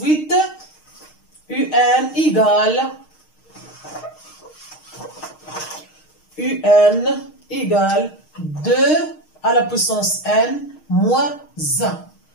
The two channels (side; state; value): right; late; 6.5 ms